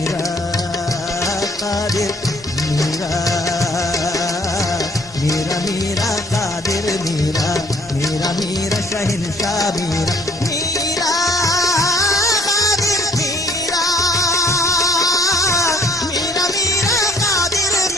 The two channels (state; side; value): normal; both; correlation 0.60